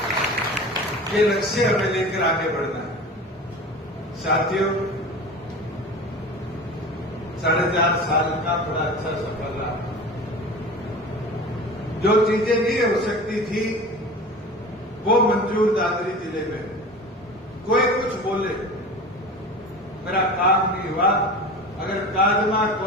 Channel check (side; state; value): both; normal; correlation 0.35